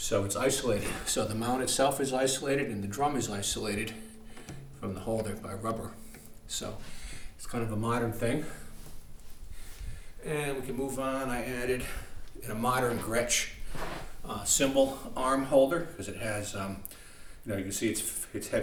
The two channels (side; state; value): both; identical; correlation 1.00